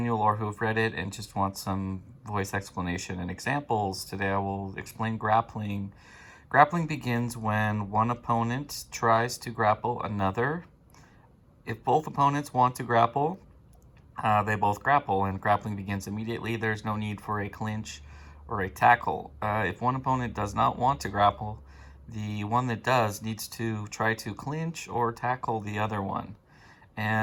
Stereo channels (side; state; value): both; identical; correlation 1.00